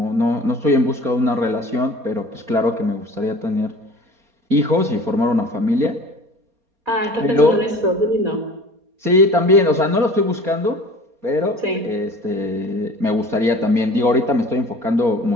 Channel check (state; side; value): late; left; 4.2 ms